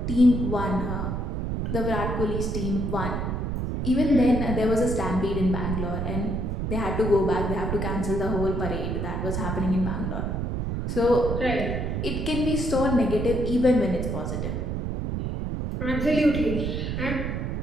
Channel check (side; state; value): right; noise; rumble, 2 dB below the sound